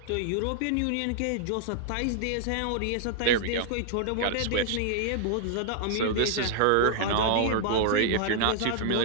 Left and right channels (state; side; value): different; both; correlation -0.01